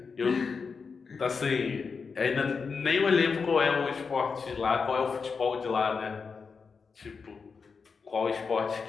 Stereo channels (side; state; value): right; quieter; 5.3 dB